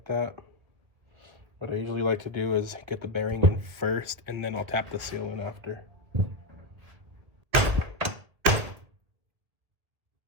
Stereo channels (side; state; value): left; late; 1.8 ms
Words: that. What I usually like to do is get the bearing in first, and then I'll tap the seal in after.